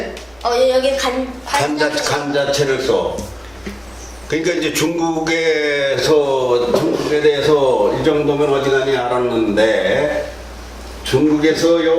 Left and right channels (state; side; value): noise; right; rumble, 30 dB below the sound